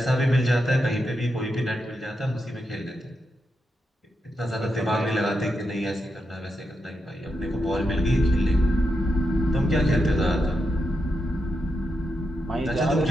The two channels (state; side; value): normal; both; correlation 0.85